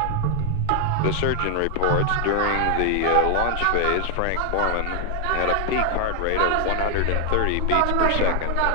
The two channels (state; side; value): different; both; correlation 0.00